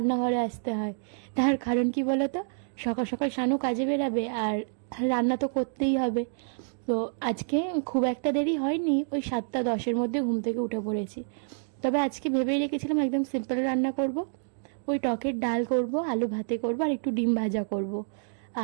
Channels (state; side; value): silent; left; digital silence